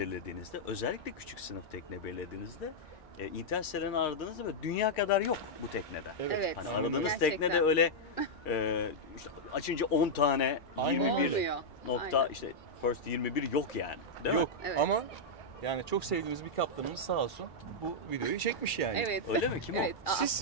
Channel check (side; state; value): right; late; 2.4 ms